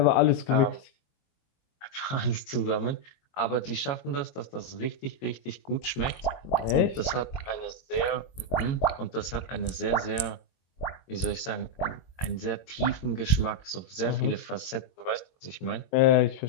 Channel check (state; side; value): late; right; 22 ms